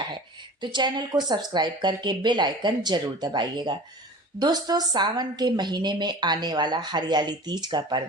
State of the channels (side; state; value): both; normal; correlation 0.39